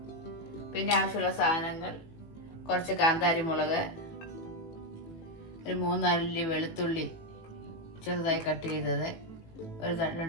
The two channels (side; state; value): right; late; 18 ms